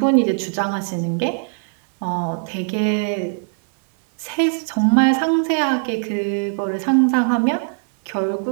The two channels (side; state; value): left; silent; 65 dB below the other